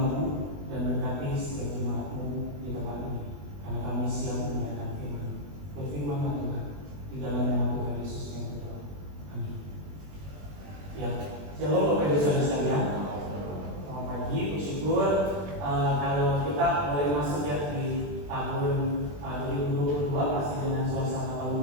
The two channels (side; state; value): left; late; 20 ms